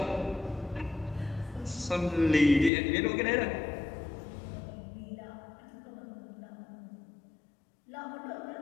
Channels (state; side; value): drops out; right; at 2.7 s